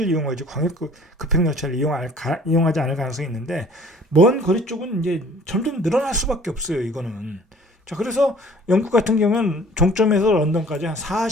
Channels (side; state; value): both; normal; correlation 0.52